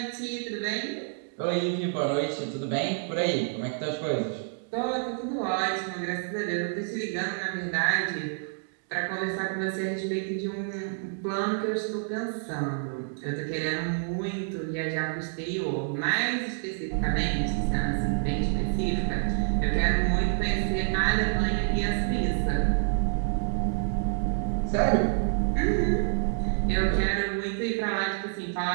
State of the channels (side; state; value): left; silent; digital silence